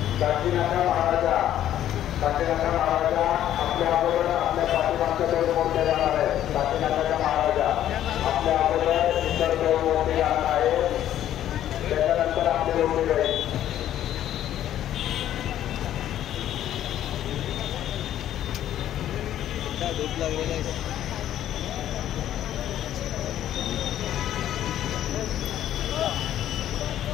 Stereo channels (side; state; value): right; quieter; 11.7 dB